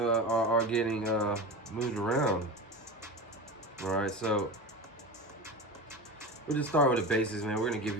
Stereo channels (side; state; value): both; normal; correlation 0.26